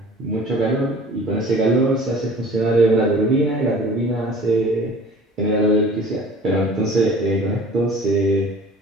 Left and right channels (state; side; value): normal; both; correlation 0.46